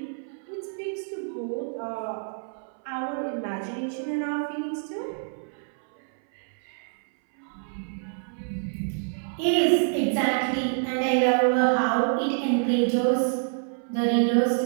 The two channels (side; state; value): left; silent; 60 dB below the other